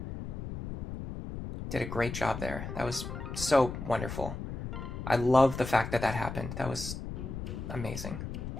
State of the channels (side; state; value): left; noise; rumble, 7 dB below the sound